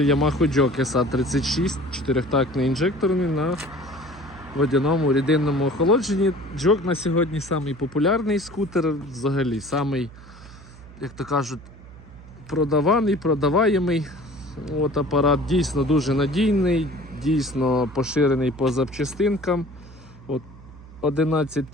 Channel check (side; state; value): right; noise; hum, 19 dB below the sound